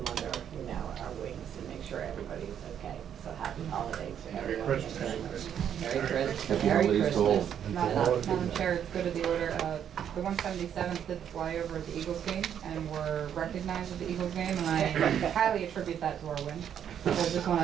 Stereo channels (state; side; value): quieter; left; 9.1 dB